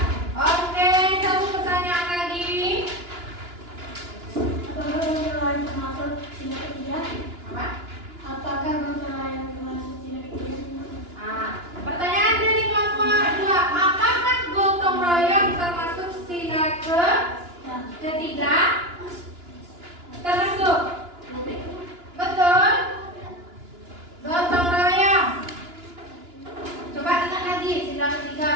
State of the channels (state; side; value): late; left; 2.9 ms